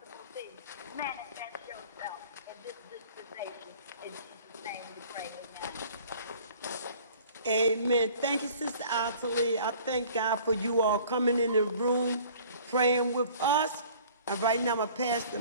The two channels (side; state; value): both; inverted; correlation -0.51